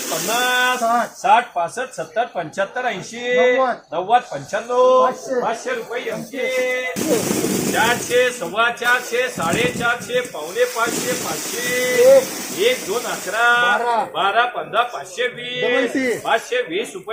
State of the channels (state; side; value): identical; both; correlation 1.00